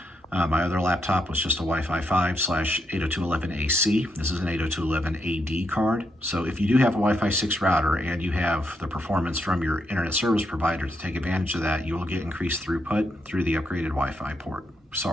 My other laptop was just a Wi-Fi 5/802.11ac. This is an 802.11ad card. So if you do have a Wi-Fi 6 router and you have the performance from your internet service provider to take advantage of that, you will get increased throughput through the upgraded Wi-Fi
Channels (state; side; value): normal; both; correlation 0.80